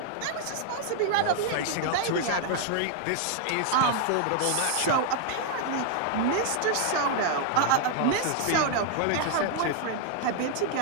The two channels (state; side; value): different; both; correlation 0.00